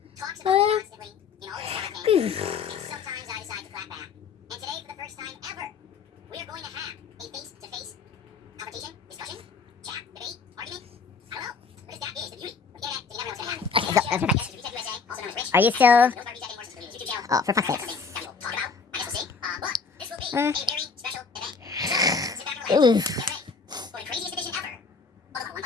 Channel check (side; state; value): right; quieter; 5.1 dB